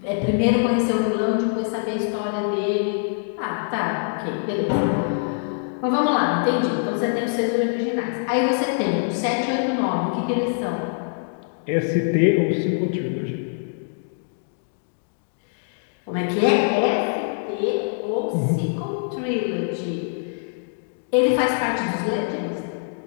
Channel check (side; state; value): right; silent; digital silence